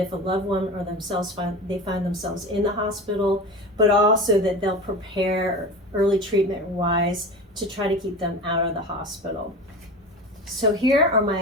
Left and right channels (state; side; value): normal; both; correlation 0.30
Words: a loved one or themselves find themselves in the hospital, but also that they'll prepare early treatment wise to try to keep them out of the hospital. So here are